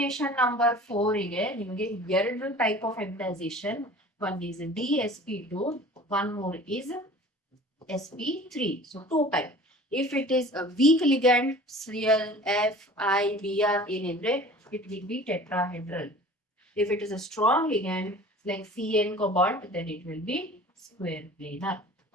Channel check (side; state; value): both; normal; correlation 0.43